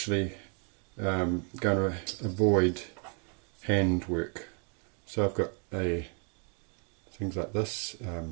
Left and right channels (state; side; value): quieter; left; 39.3 dB